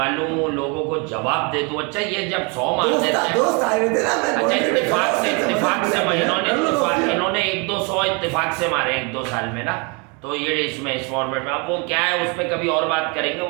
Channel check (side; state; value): left; quieter; 31.2 dB